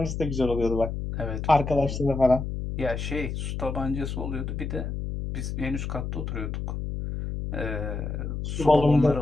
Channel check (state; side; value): noise; left; hum, 4 dB below the sound